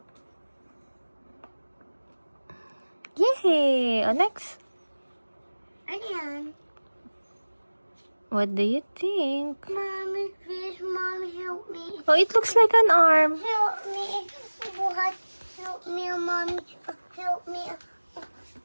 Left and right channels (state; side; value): inverted; both; correlation -1.00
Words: Yay! Oh, next. Ano yan? What do you think? Mommy, please, Mommy, help me. Oh, it looks like an arm. Help me. Buhat. Help me, Mommy. Help me.